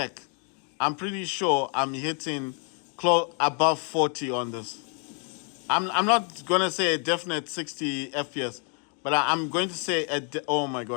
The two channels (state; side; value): quieter; right; 39.0 dB